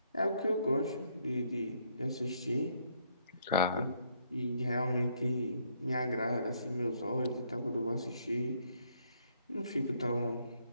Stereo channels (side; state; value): both; inverted; correlation -0.71